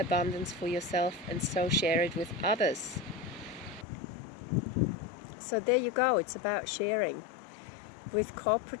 for yourself, and so share it with others. So there you go, it's about sharing. With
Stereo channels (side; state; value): right; drops out; at 3.9 s